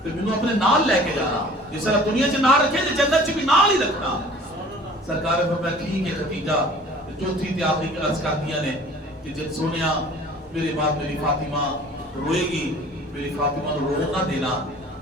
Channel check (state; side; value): normal; both; correlation 0.48